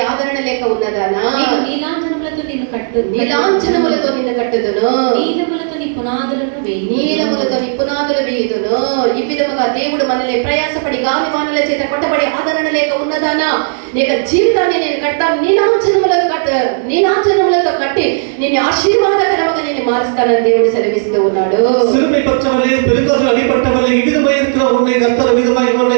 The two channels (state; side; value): silent; left; 71 dB below the other